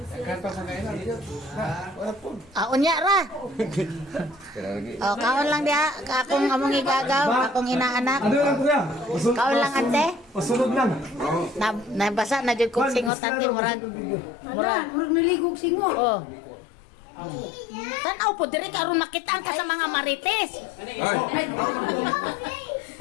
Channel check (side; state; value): right; drops out; at 13.1 s